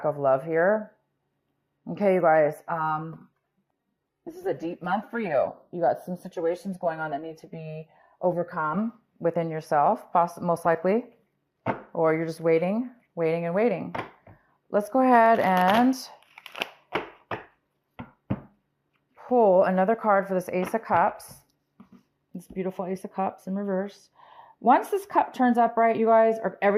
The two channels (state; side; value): identical; both; correlation 1.00